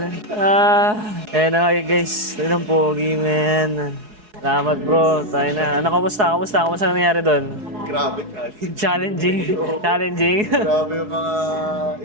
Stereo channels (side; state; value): left; late; 4.7 ms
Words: Ayan na nga guys. Ito ng pogi, man. Salamat, bro. Tayo na. Ano, kamusta? Kamusta nangyari doon? Grabe, challenge. Challenging. Challenging. Grabe yung mga